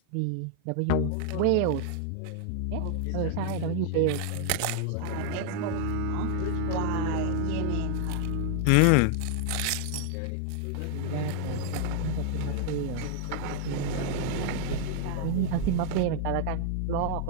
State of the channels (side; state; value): both; different; correlation 0.00